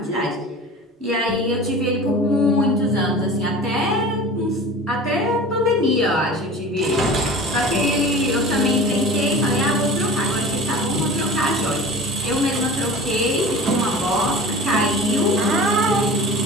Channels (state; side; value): normal; both; correlation 0.38